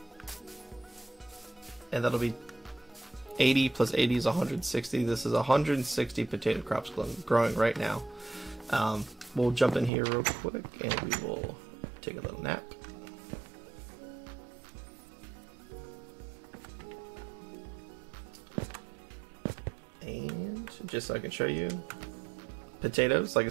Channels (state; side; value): drops out; left; at 9.9 s